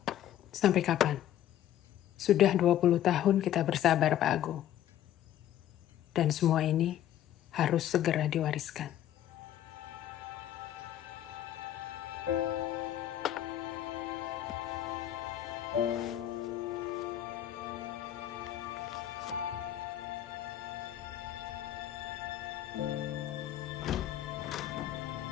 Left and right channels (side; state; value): right; quieter; 11.8 dB